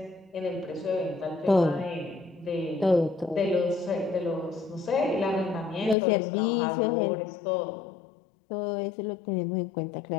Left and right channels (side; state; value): right; drops out; at 6.0 s